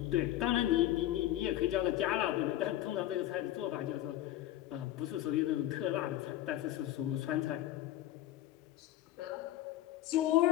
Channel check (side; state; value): right; quieter; 13.9 dB